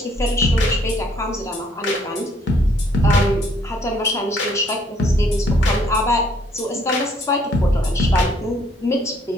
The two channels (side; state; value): both; normal; correlation 0.65